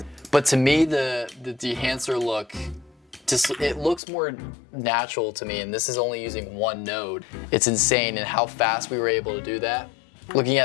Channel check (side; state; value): right; drops out; at 4.0 s